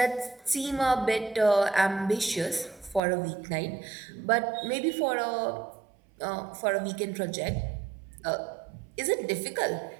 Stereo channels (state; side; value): drops out; left; at 3.0 s